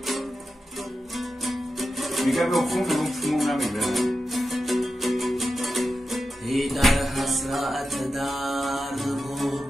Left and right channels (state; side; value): normal; both; correlation 0.91